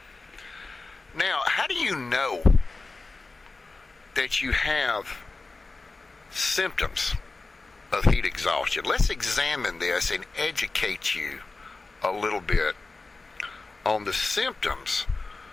Now, how do you know that you have symptoms of heat exhaustion? Let's examine this and educate you a little bit on the symptoms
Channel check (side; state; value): right; quieter; 3.6 dB